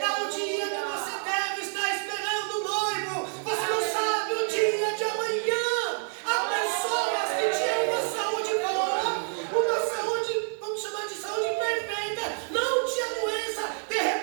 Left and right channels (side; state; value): left; silent; 56 dB below the other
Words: o dia que você deve estar esperando o noivo. Você não sabe o dia de amanhã. Há pessoas que tinham uma saúde boa, uma saúde, vamos chamar de saúde perfeita, não tinha doença, de